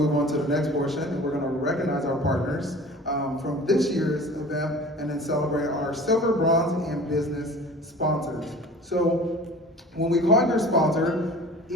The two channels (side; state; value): both; normal; correlation 0.42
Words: on to the next portion, and we're going to recognize our partners from this year's event, and then celebrate our silver, bronze, and business sponsors. So when we call your sponsor,